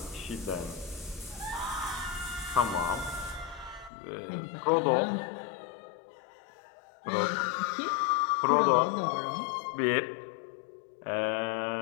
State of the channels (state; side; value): drops out; right; at 3.9 s